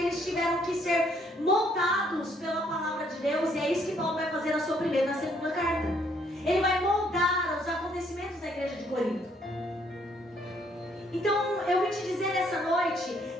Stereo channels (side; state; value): both; normal; correlation 0.67